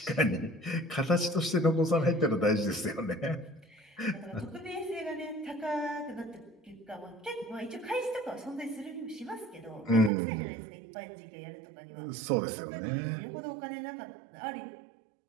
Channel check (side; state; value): left; drops out; at 10.1 s